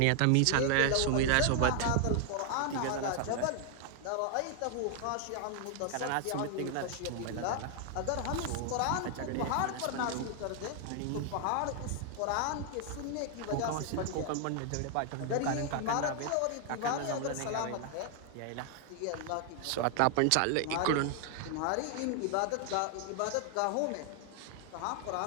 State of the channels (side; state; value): both; different; correlation 0.00